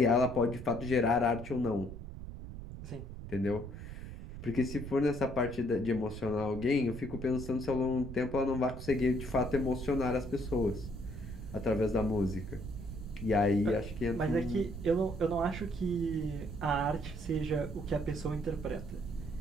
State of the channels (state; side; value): noise; right; rumble, 10 dB below the sound